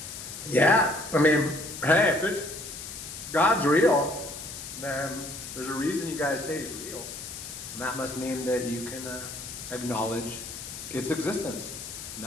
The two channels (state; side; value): noise; left; hiss, 10 dB below the sound